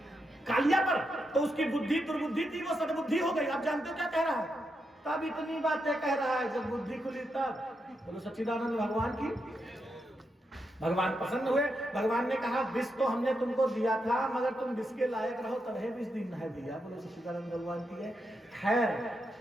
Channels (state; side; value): normal; both; correlation 0.84